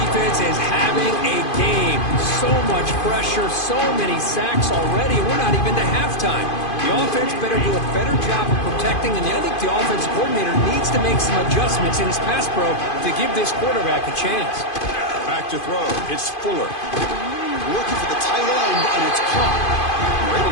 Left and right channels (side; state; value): right; late; 2.5 ms